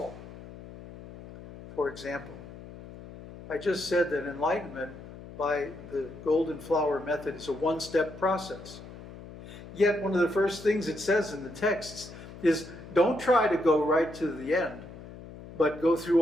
For example, I just said that enlightenment by the golden flower method is a one-step process. Yet one of the first things it says in the texts is don't try to go right to the end, but go through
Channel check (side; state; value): left; noise; hum, 15 dB below the sound